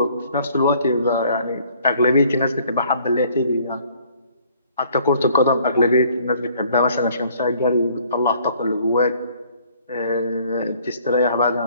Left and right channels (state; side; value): inverted; both; correlation -0.59